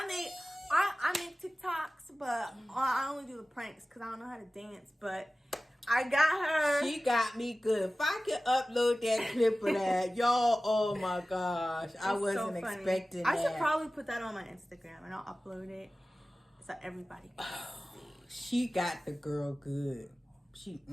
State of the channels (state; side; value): normal; both; correlation 0.97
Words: make TikToks, but I only do the pranks because I don't know how to dance. But I got her. She got me good. If I could upload that clip of that, y'all, oh my gosh. I wasn't expecting that. I should probably put that on my Instagram and I'll upload it so everybody can see. She got the girl good.